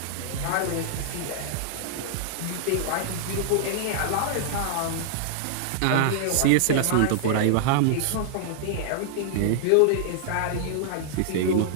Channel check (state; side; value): different; both; correlation -0.01